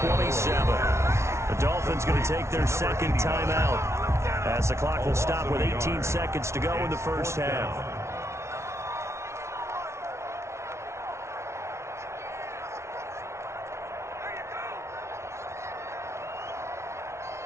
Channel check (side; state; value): left; late; 0.13 ms